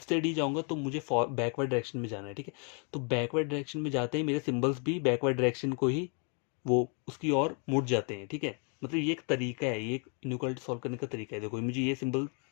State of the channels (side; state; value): right; quieter; 38.4 dB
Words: से डी जाऊंगा तो मुझे बैकवर्ड डायरेक्शन में जाना है, ठीक है। तो बैकवर्ड डायरेक्शन में जाते ही मेरे सिंबल्स भी बैकवर्ड डायरेक्शन को ही वो उसकी ओर मुड़ जाते हैं, ठीक है। मतलब ये एक तरीका है, ये एक इनइक्वालिटी सॉल्व करने का तरीका है। देखो मुझे ये सिंबल,